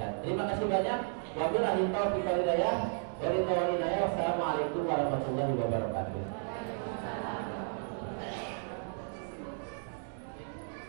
Terima kasih banyak. Wabillahi taufiq wal hidayah. Wassalamualaikum warahmatullahi wabarakatuh.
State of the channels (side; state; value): left; silent; 55 dB below the other